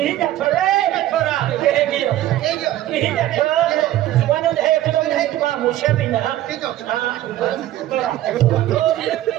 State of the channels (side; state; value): left; quieter; 14.0 dB